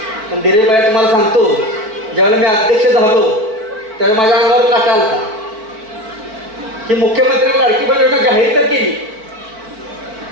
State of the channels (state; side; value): late; left; 4.6 ms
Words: पण धीरज भैया तुम्हाला सांगतो ज्यावेळेला मी अध्यक्ष झालो त्यावेळेला माझ्या अंगावर काटा आलता की मुख्यमंत्र्यांनी लाडकी बहीण योजना जाहीर तर केली,